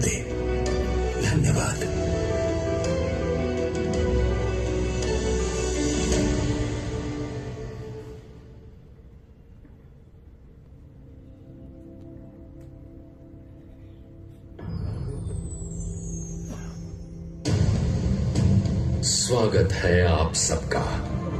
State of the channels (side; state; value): both; identical; correlation 1.00